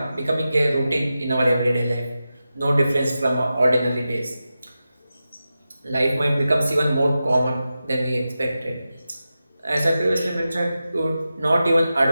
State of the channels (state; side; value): inverted; both; correlation -0.92